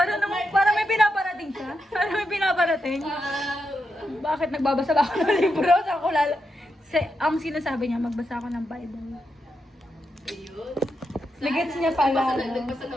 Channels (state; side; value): normal; both; correlation 0.85